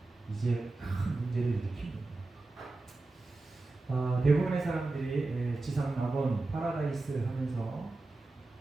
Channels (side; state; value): left; quieter; 3.3 dB